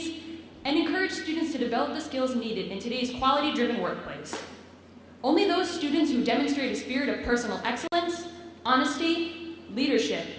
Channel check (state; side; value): identical; both; correlation 1.00